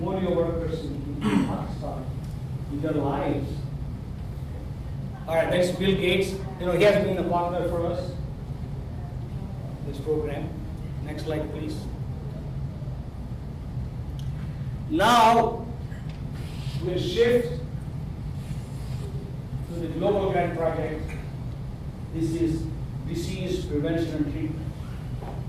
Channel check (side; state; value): both; identical; correlation 1.00